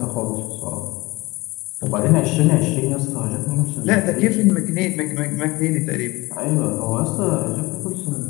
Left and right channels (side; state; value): right; quieter; 21.7 dB